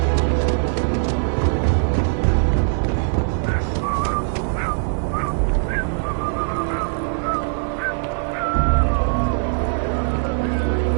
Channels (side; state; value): left; silent; 64 dB below the other